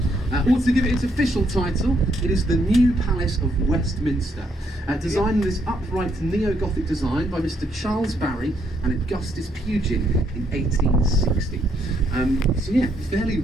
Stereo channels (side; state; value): both; normal; correlation 0.73